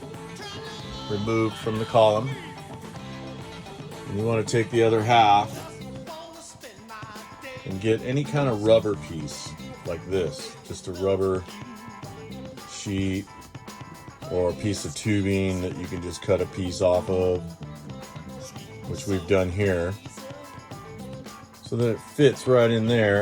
removed from the column. And you want to take the other half and get any kind of rubber piece like this, just a rubber sheet or a piece of tubing that you can just cut a piece off of, which we've done here, so that it fits right in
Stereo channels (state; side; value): identical; both; correlation 1.00